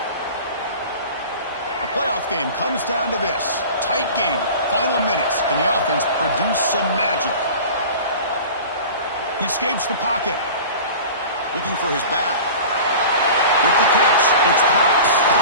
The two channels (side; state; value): both; inverted; correlation -0.38